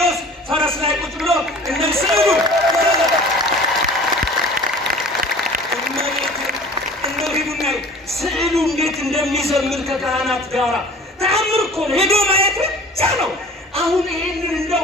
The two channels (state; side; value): normal; both; correlation 0.45